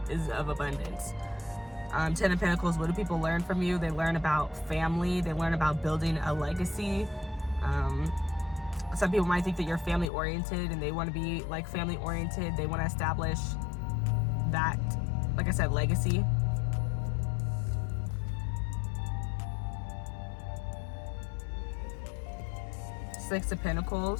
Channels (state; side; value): drops out; right; at 10.1 s